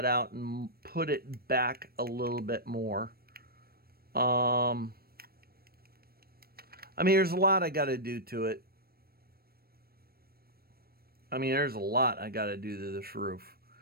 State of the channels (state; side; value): late; left; 0.44 ms